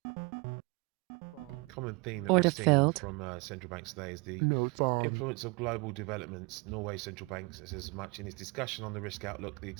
bond, Common theme that Order we've seen filled. from central banks today is the notes, bond, influence of global developments. Norway's central bank says as much in its discussion on the risk outlook. The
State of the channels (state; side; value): quieter; left; 27.5 dB